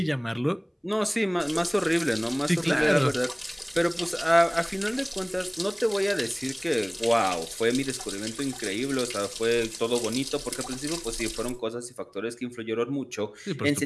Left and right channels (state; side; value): identical; both; correlation 1.00